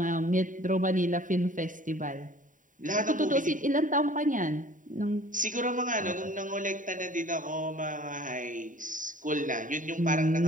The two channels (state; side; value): late; left; 0.38 ms